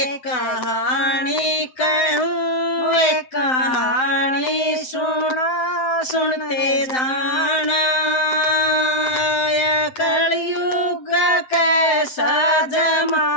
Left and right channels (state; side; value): late; right; 7.9 ms